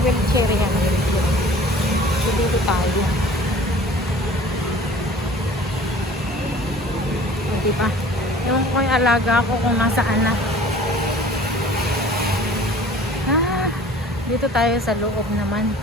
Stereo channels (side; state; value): both; normal; correlation 0.47